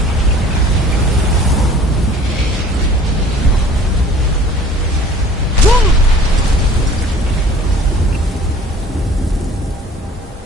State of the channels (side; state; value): both; normal; correlation 0.49